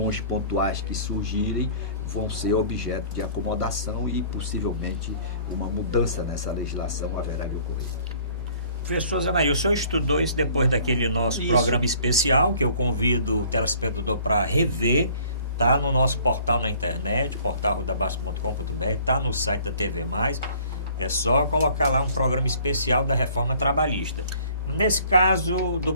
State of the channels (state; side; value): inverted; both; correlation -0.54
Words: pontuais que surgirem vão ser objeto de acomodação e possivelmente uma mudança nessa legislação haverá de ocorrer. Professor Zé Maria, o senhor estudou isso depois daquele nosso programa especial, que eu convido o telespectador para rever. Está no nosso portal na internet, portalrudabasco.com.br, está no site da TV+. É só colocar lá um programa especial da reforma trabalhista. Nesse caso do